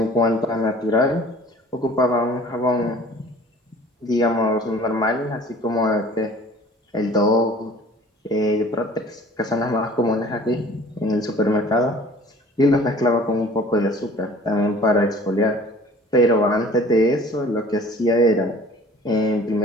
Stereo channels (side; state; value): both; normal; correlation 0.50